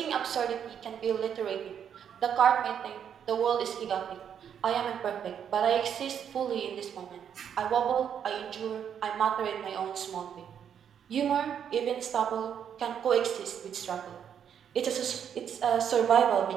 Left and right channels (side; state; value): left; quieter; 8.4 dB